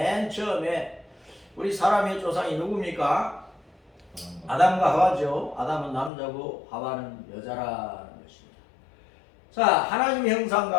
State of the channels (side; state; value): right; drops out; at 6.1 s